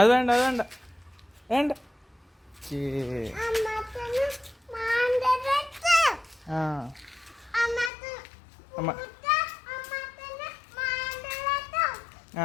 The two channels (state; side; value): drops out; right; at 7.9 s